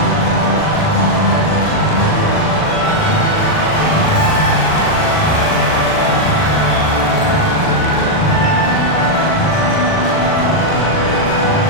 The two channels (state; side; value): late; right; 39 ms